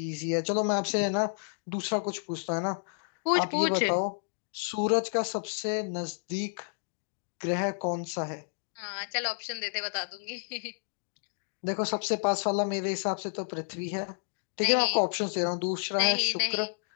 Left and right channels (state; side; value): silent; right; digital silence